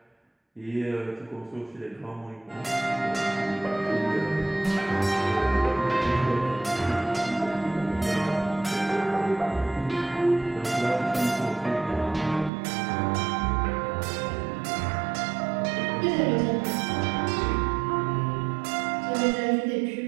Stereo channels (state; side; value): drops out; left; at 12.5 s